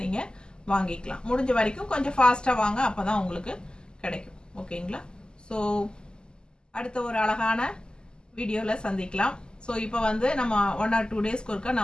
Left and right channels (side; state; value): right; late; 0.047 ms